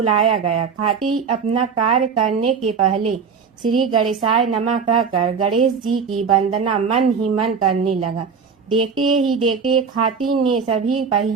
गया। खाती अपना कार्य करने के पहले श्री गणेशाय नमः कहकर गणेश जी की वंदना मन ही मन करने लगा। देखते ही देखते खाती ने सभी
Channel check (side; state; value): left; quieter; 5.9 dB